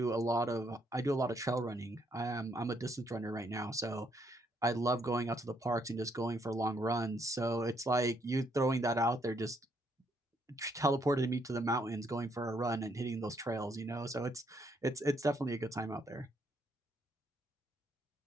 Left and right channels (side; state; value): both; normal; correlation 0.72